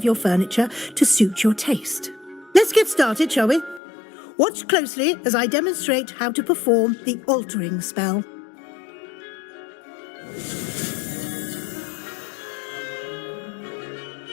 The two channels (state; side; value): drops out; right; at 3.8 s